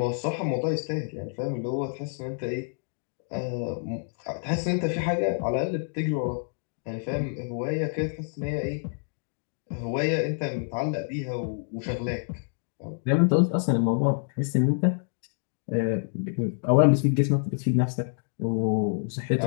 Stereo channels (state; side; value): silent; right; digital silence